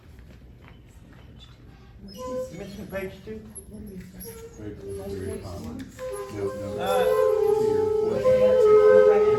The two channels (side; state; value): both; identical; correlation 1.00